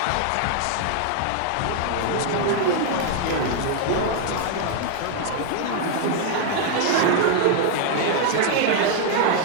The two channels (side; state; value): both; different; correlation 0.00